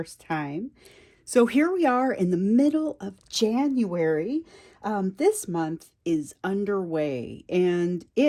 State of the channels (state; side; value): identical; both; correlation 1.00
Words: time. So, here we are in the middle of January. This month is underway, and